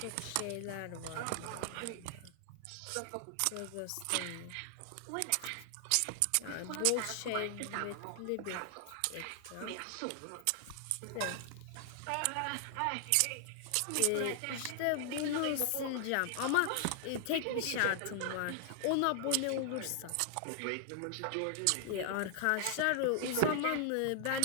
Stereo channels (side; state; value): both; different; correlation 0.00